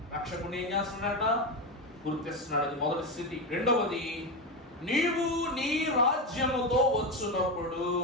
రక్షకుడు ఏం చేస్తున్నాడట, గుర్తిస్తున్నాడు. అది మొదటి స్థితి. రెండవది, నీవు నీ రాజ్యముతో వచ్చినప్పుడు.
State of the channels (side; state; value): both; normal; correlation 0.14